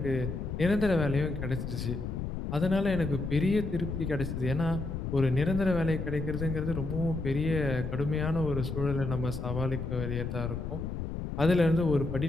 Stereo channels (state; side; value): noise; left; rumble, 4 dB below the sound